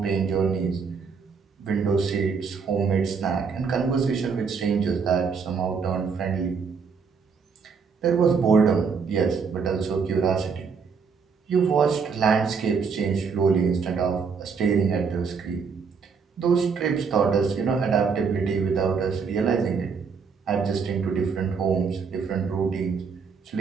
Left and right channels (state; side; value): quieter; left; 5.7 dB